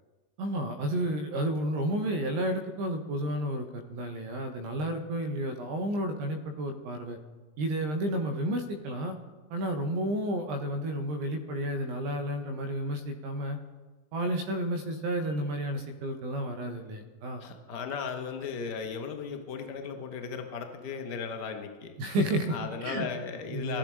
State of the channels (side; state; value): left; late; 20 ms